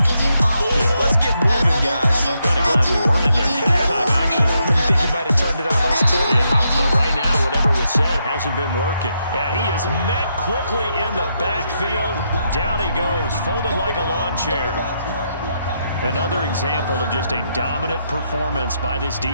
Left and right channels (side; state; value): both; inverted; correlation -0.80